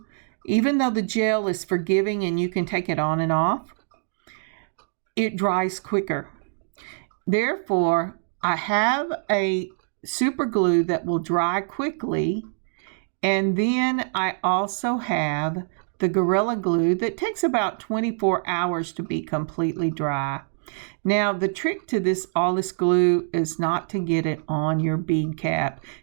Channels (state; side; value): silent; left; digital silence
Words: even though the gel is forgiving and you can take it on and off, it dries quicker. Therefore, I have a super glue that will dry quickly. And then I also have the Gorilla Glue that takes about 24 hours to be completely dry. Now, the trick to all this glue is not to get it on your bead cap,